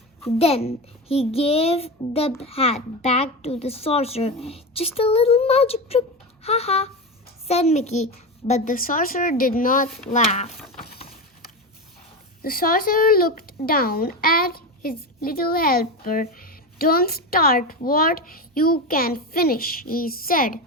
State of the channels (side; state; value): both; normal; correlation 0.20